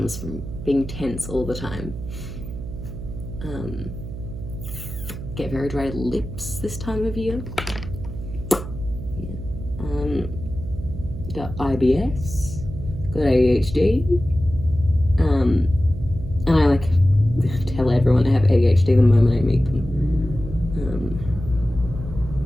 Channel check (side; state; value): right; noise; hum, 9 dB below the sound